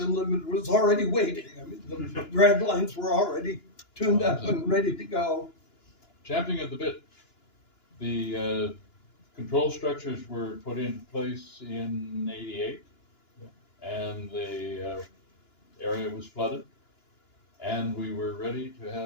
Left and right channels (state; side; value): late; right; 2.9 ms